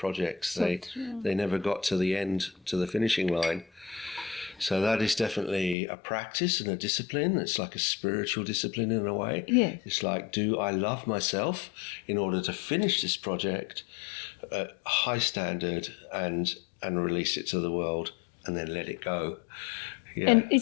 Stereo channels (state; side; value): drops out; right; at 5.8 s